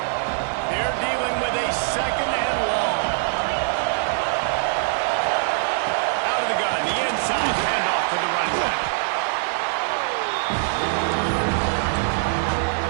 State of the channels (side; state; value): left; silent; digital silence